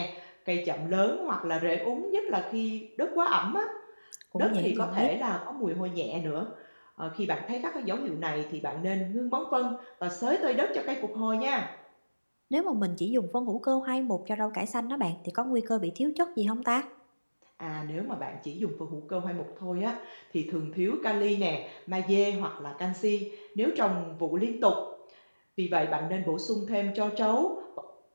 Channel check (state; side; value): inverted; both; correlation -1.00